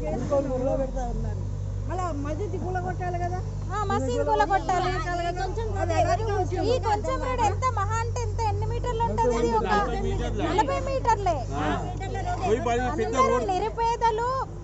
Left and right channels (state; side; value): identical; both; correlation 1.00